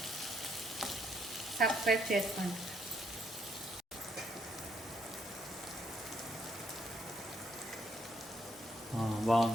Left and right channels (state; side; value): normal; both; correlation 0.72